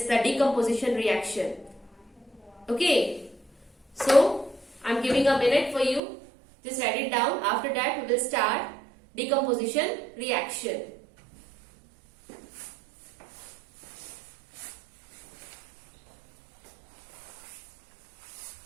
the decomposition reaction. Okay. So I'm giving a minute for you. Just write it down. After that we will start decomposition reaction.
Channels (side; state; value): left; drops out; at 6.0 s